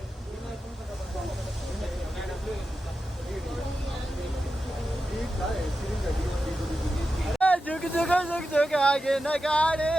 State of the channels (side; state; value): both; normal; correlation 0.91